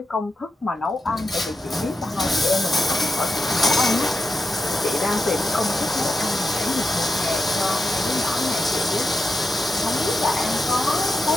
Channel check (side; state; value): both; normal; correlation 0.87